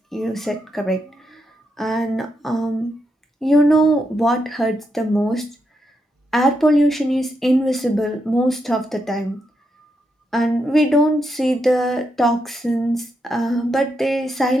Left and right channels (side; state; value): both; normal; correlation 0.82